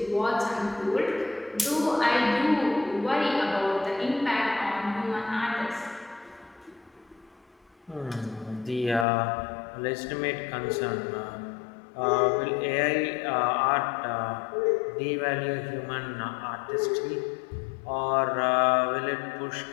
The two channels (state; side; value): drops out; right; at 9.1 s